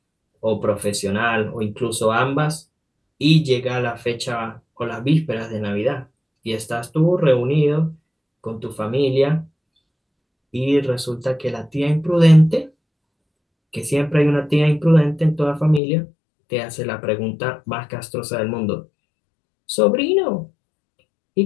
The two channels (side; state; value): right; drops out; at 15.8 s